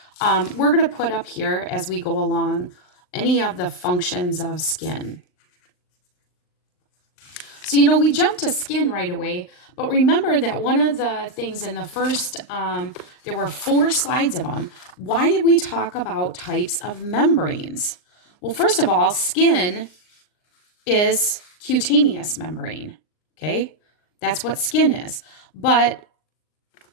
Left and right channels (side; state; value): right; late; 39 ms